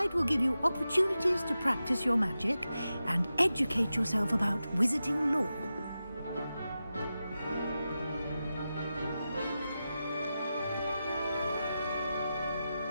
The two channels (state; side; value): inverted; both; correlation -0.91